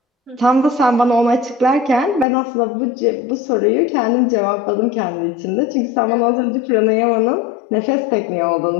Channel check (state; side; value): drops out; right; at 2.2 s